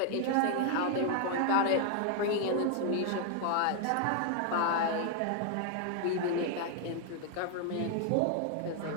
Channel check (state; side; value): different; both; correlation 0.00